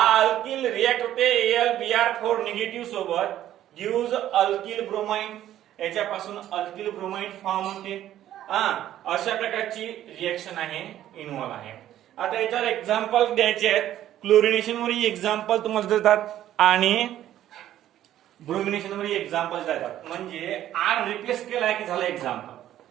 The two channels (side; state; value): left; quieter; 12.3 dB